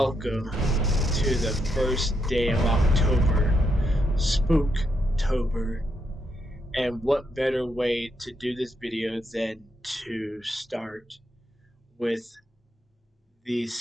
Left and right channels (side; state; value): both; normal; correlation 0.80